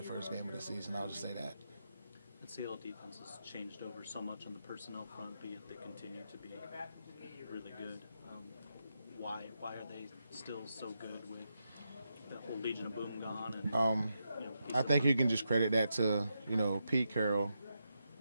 first game of the season. I'll just say that. The Seattle defense has changed over so much on the personnel front, but yet they continue to be really good. Why are they still so good with the whole Legion of Boom gone? And, I think you can just credit that to, Pete Carroll,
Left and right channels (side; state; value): both; inverted; correlation -0.85